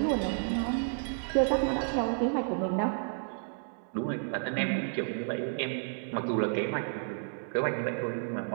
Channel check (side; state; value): left; silent; 57 dB below the other